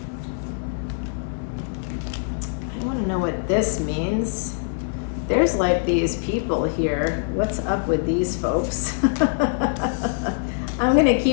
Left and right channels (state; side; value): silent; right; 63 dB below the other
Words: I wanna know what this means. There's like these people here. What's up with these folks? I'm gonna